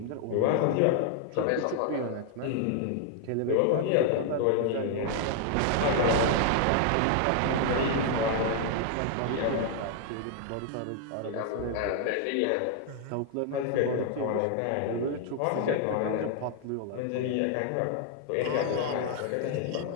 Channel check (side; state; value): both; different; correlation 0.00